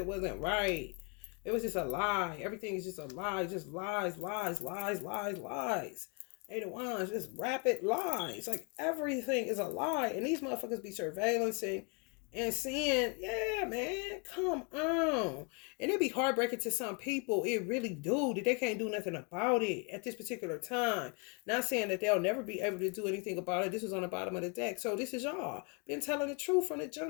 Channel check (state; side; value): quieter; right; 34.5 dB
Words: wasn't right. It was just a lie. Everything is just a lie. Just lies, lies, lies, lies, lies. Eight of Wands, just rapid lies. Like everything is a lie. And these motherfuckers be surveillancing and seeing, yeah, man, come on. And it be heartbreaking to some people. It really do. That they can't do nothing about it at this particular time. Not saying that they'll never be able to do anything about it. This was on the bottom of the deck. So this is y'all. Been telling the truth from the